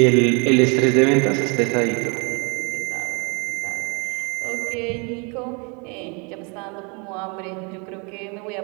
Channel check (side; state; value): left; quieter; 33.2 dB